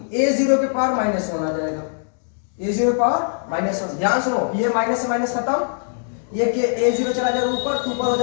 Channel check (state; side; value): silent; right; digital silence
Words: a0 के पावर माइनस 1 आ जाएगा, a0 के पावर माइनस 1। ध्यान सुनो, ये माइनस से माइनस खत्म, ये के a0 चला जाएगा ऊपर, 2 पर हो